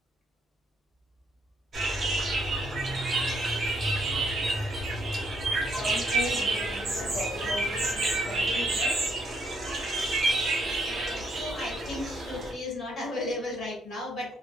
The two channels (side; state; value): both; normal; correlation 0.73